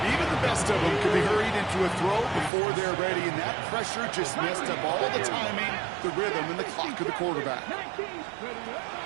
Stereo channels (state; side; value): drops out; left; at 2.5 s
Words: Even the best of them can be hurried into a throw before they're ready, and that pressure just messed up all the timing, the rhythm, and the clock of the quarterback.